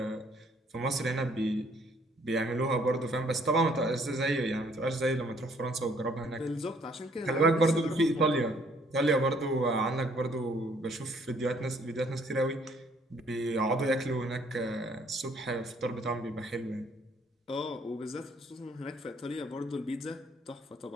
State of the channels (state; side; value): normal; both; correlation 0.63